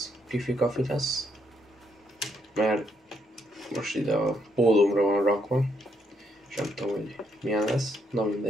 kifi-kafi lesz, mert most ide a pólómra van rakva, és nem tudom, hogy milyen lesz, na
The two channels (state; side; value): normal; both; correlation 0.74